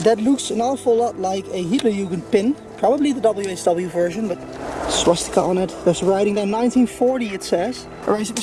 That looks an awful lot like a Hitlerjugend pin. Probably the WHW version, but swastika on it. There's writing there, 1940 it says. Alright,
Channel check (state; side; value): identical; both; correlation 1.00